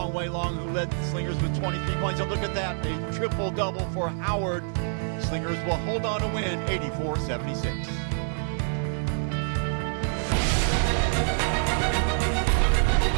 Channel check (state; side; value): silent; left; digital silence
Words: Wei Long, who led the Slingers with 23 points. And look at that, a triple-double for Howard. Slingers will hold on to win 84-76.